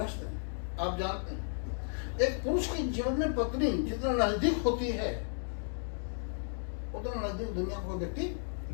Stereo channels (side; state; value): right; silent; digital silence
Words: हैं, आप जानते हैं एक पुरुष के जीवन में पत्नी जितना नजदीक होती है उतना नजदीक दुनिया को व्यक्ति